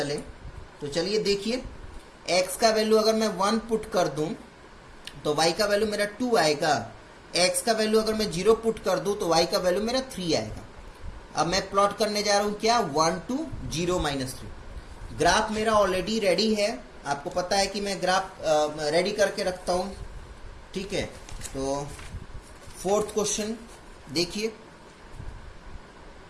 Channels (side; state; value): both; identical; correlation 1.00